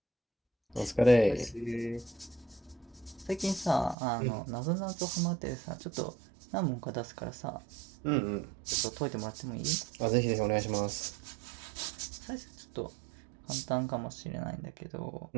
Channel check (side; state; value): left; drops out; at 4.0 s